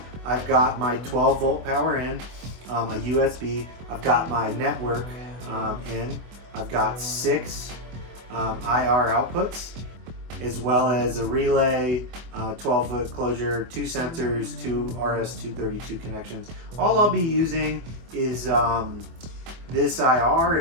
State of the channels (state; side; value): late; left; 24 ms